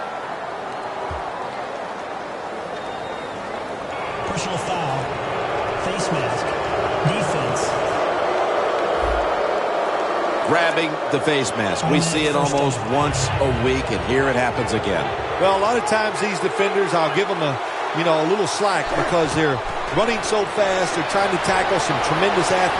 Personal foul. Face mask. Defense. grabbing the face mask. We see it almost once a week, and here it happens again. Well, a lot of times these defenders, I'll give them a little slack because they're running so fast. They're trying to tackle some tremendous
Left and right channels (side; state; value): both; identical; correlation 1.00